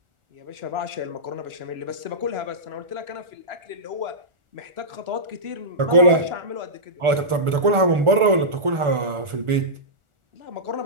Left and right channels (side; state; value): left; late; 1.4 ms